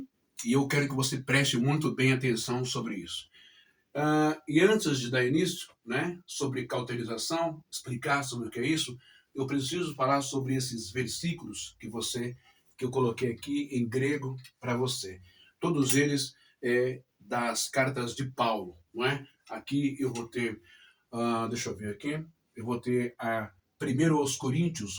E eu quero que você preste muito bem atenção sobre isso. E antes de dar início, né, sobre cauterização, explicar sobre o que é isso, eu preciso falar sobre esses versículos que eu coloquei aqui em grego para você. Todos eles das cartas de Paulo, não é? Aqui eu vou ter, deixa eu ver aqui, eu vou ter a 1 aos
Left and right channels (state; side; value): identical; both; correlation 1.00